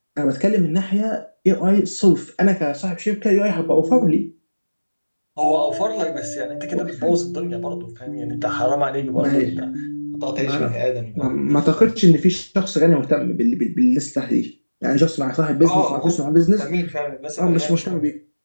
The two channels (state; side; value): inverted; both; correlation -1.00